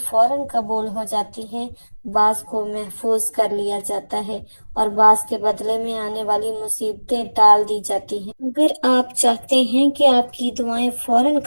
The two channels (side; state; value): both; inverted; correlation -1.00